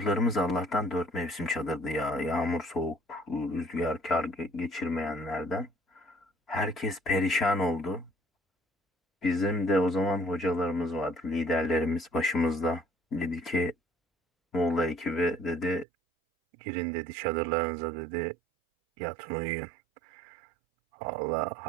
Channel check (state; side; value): drops out; left; at 15.9 s